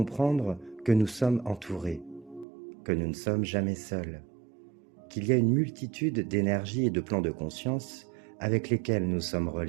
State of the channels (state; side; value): drops out; left; at 2.5 s